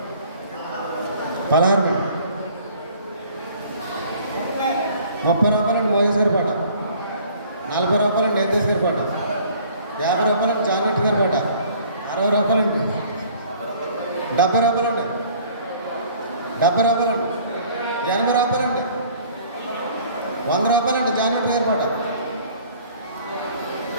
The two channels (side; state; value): both; inverted; correlation -0.52